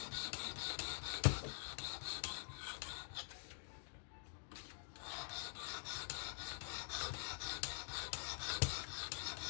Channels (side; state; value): right; silent; digital silence